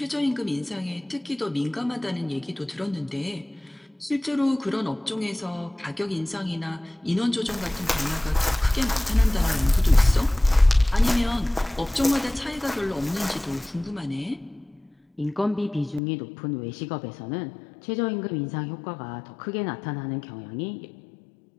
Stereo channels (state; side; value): drops out; right; at 16.0 s